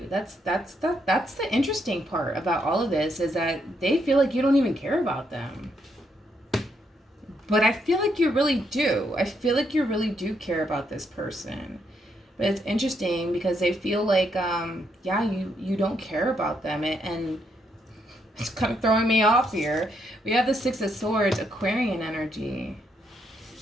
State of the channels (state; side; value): normal; both; correlation 0.76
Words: That's the interesting part about all of this, is that they feel like you don't even care about them. But I feel like you really do. I feel like you really do care about this person. But it's interesting because they feel like, yeah, you don't care about them. And it's kind of throwing me off here. We have the Six of Swords, Aquarian energy.